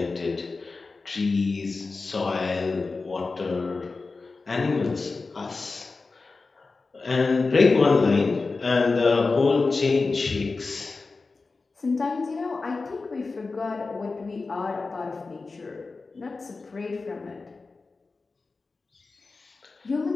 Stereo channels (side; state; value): right; quieter; 4.0 dB